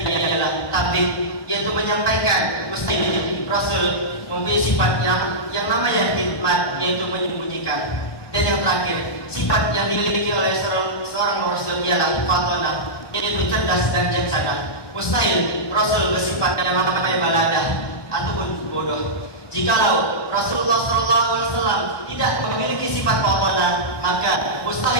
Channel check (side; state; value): right; late; 1.2 ms